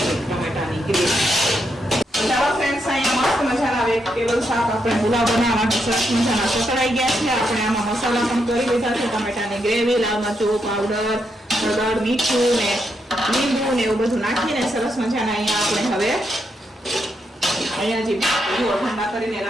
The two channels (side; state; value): both; normal; correlation 0.81